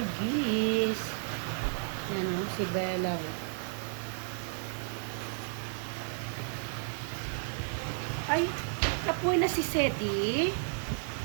Yan o, si Bella. Ay, kapoy na si Sedi.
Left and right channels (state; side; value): silent; left; 56 dB below the other